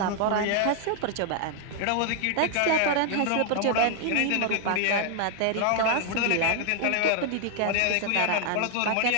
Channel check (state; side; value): different; both; correlation 0.00